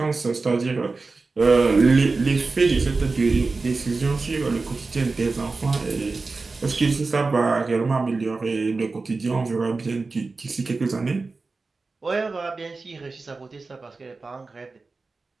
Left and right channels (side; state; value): left; quieter; 3.9 dB